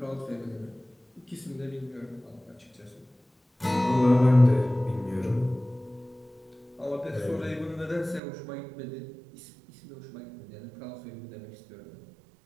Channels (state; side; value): drops out; left; at 8.2 s